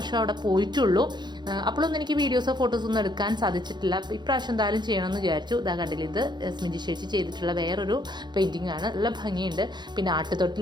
അവിടെ പോയിട്ടുള്ളൂ. അപ്പോഴൊന്നും എനിക്ക് വീഡിയോസോ ഫോട്ടോസോ ഒന്നും എടുക്കാൻ സാധിച്ചിട്ടില്ല. ഇപ്രാവശ്യം എന്തായാലും ചെയ്യണമെന്ന് വിചാരിച്ചു. ഇതാ കണ്ടില്ല, ഇത് സ്മിജി ചേച്ചി ചെയ്തിട്ടുള്ള വേറൊരു പെയിന്റിംഗ് ആണ്. നല്ല ഭംഗിയുണ്ട്. പിന്നെ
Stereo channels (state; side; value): late; left; 0.21 ms